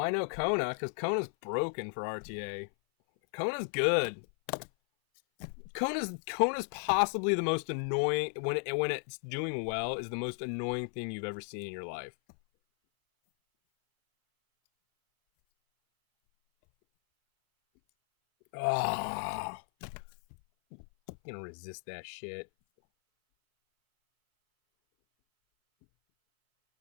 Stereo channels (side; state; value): right; silent; 55 dB below the other